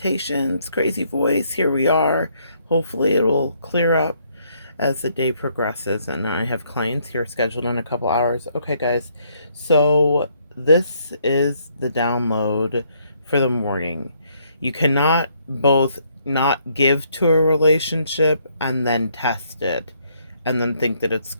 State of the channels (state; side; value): inverted; both; correlation -0.70